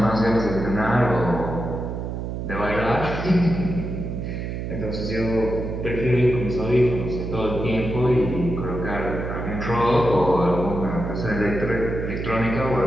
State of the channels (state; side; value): noise; right; hum, 5 dB below the sound